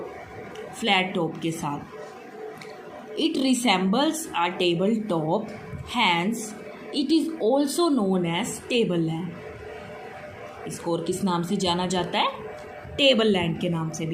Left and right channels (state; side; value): identical; both; correlation 1.00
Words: टॉप के साथ। It resembles a table top, hence it is also known as table land. इसको और किस नाम से जाना जाता है, टेबल लैंड के नाम से